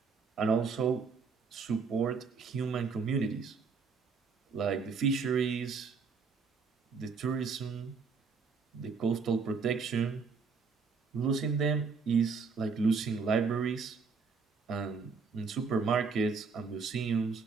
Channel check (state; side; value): quieter; left; 5.1 dB